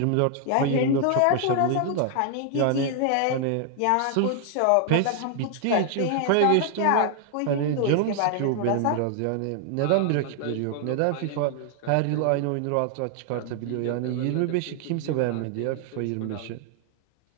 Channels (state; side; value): different; both; correlation 0.00